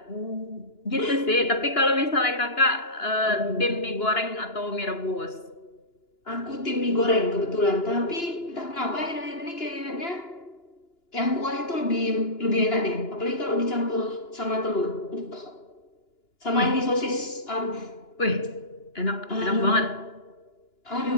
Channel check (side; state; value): right; late; 2.9 ms